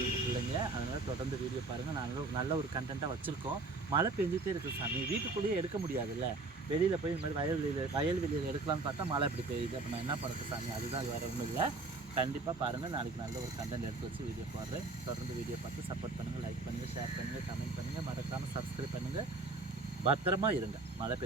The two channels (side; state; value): left; quieter; 3.5 dB